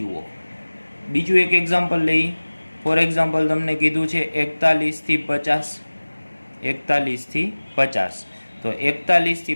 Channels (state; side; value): inverted; both; correlation -1.00